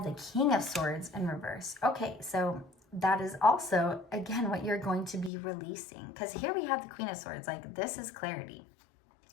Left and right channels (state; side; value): drops out; right; at 5.3 s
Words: the King of Swords in reverse. Okay, so that is also, again, what you're going to be releasing. Because here we have the Queen of Swords. Like, this is clarity.